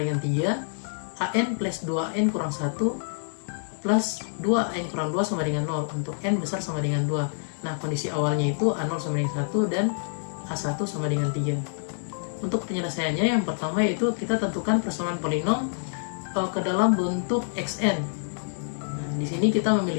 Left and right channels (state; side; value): silent; right; digital silence